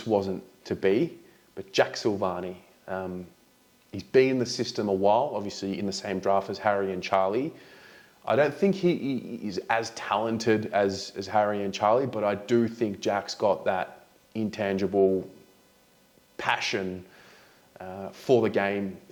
wasn't to be. But Jack Sylvani, he's been in the system a while, obviously in the same draft as Harry and Charlie. I don't think he is as talented as Harry and Charlie, but I do think Jack's got that intangible passion for the game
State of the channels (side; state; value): both; identical; correlation 1.00